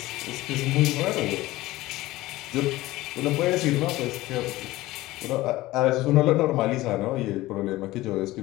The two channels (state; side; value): quieter; right; 17.9 dB